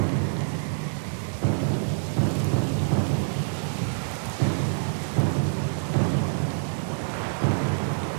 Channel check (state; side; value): silent; left; digital silence